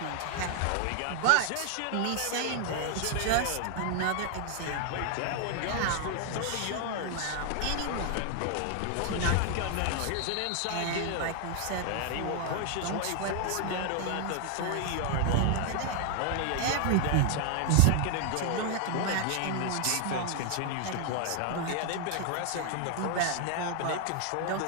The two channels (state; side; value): different; both; correlation 0.00